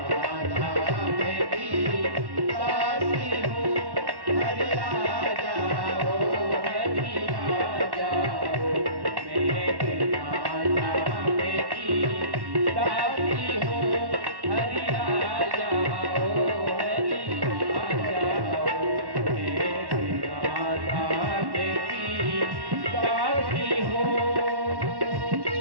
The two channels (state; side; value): late; left; 1.1 ms